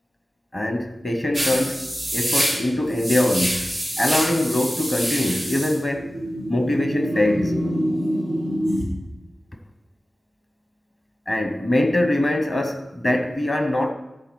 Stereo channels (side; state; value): both; normal; correlation 0.95